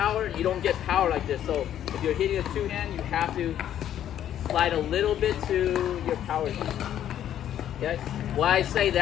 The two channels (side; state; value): right; quieter; 10.8 dB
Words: you don't get power like this. So if you're hitting a two-hand, you have to slide a little bit to your power zone. Okay? Why I say